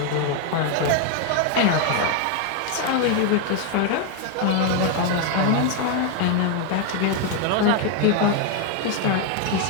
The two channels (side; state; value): both; different; correlation 0.01